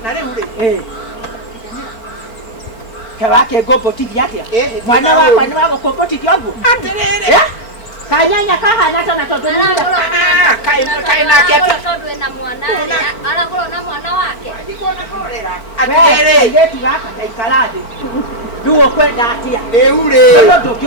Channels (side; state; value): right; late; 4.4 ms